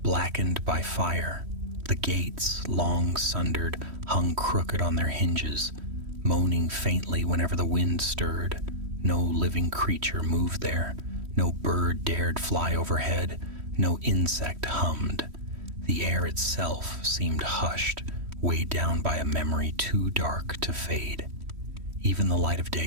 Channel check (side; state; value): left; late; 3.1 ms